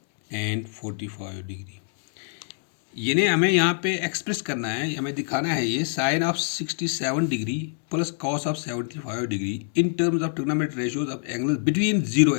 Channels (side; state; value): right; silent; digital silence